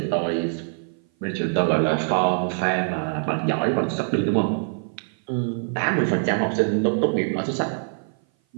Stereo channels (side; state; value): left; silent; 57 dB below the other